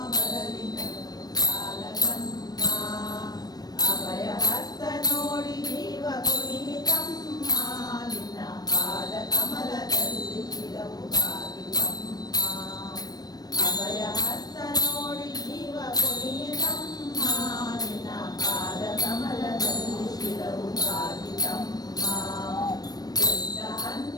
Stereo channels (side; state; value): right; late; 0.19 ms